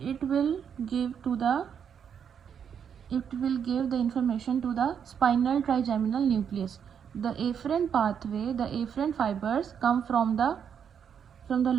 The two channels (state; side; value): quieter; left; 7.7 dB